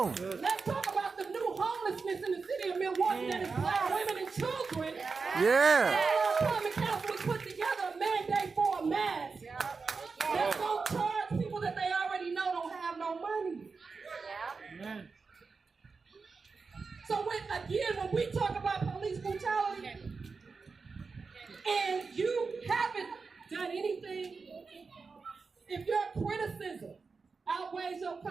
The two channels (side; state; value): left; quieter; 4.7 dB